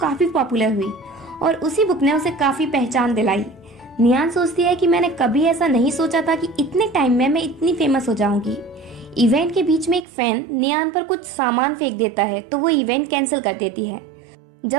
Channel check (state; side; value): drops out; left; at 10.1 s